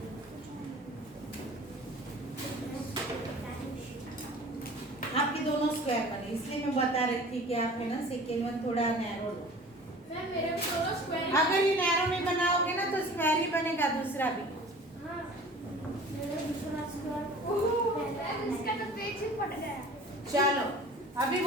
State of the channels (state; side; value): normal; both; correlation 0.44